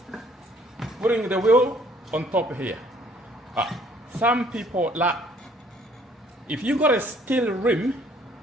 putting the wheel on top here. Some people like, if you got a steel rim,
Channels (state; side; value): normal; both; correlation 0.60